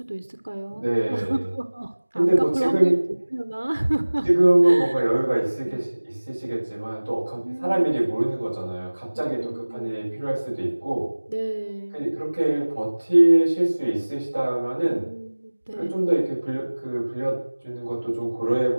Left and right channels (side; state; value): both; inverted; correlation -1.00